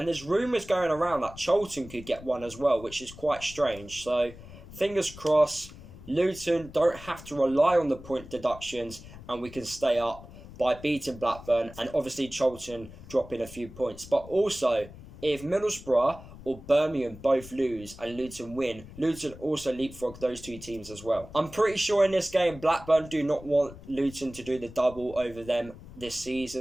there's rumours going around that Charlton could get one as well, which is quite strange. So fingers crossed, Luton don't have to rely on the point deductions and we can stay up by beating Blackburn and obviously Charlton dropping a few points. But also, if Middlesbrough or Birmingham both lose and Luton win, Luton also leapfrog those two teams as well. I'm pretty sure in this game, Blackburn do not want Luton to do the double over them this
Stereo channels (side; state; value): left; noise; rumble, 17 dB below the sound